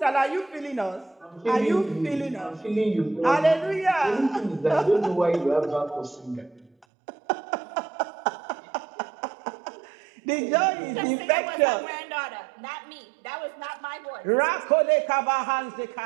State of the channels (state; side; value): drops out; left; at 6.9 s